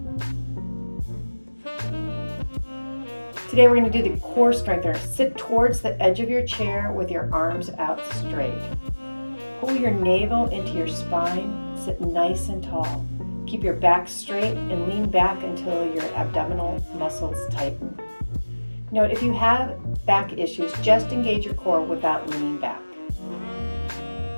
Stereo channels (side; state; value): both; inverted; correlation -1.00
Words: Today we're going to do the core strengthener. Sit towards the edge of your chair with your arms out straight. Pull your navel into your spine. Sit nice and tall. Keep your back straight and lean back until your abdominal muscles tighten. Note, if you have back issues, just engage your core without leaning back.